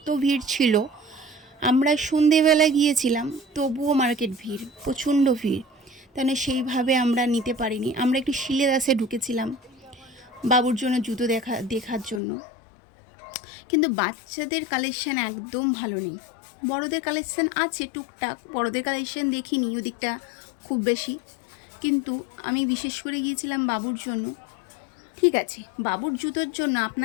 ভিড় ছিল। আমরা সন্ধেবেলা গিয়েছিলাম, তবুও মার্কেট ভিড়, প্রচণ্ড ভিড়, তাহলে সেইভাবে আমরা নিতে পারিনি। আমরা একটু শিলেদাসে ঢুকেছিলাম বাবুর জন্য জুতো দেখার জন্য, কিন্তু বাচ্চাদের কালেকশান একদম ভালো নেই। বড়দের কালেকশান আছে টুকটাক, বড়দের কালেকশান দেখিনি ওদিকটা খুব বেশি, কিন্তু আমি বিশেষ করে গিয়েছিলাম বাবুর জন্য। ঠিক আছে, বাবুর জুতোর জন্য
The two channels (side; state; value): right; drops out; at 12.2 s